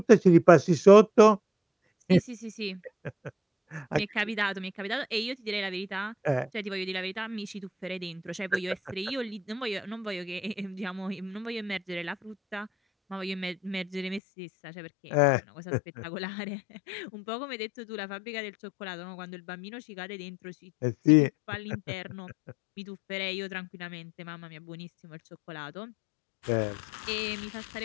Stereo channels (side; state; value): right; drops out; at 14.2 s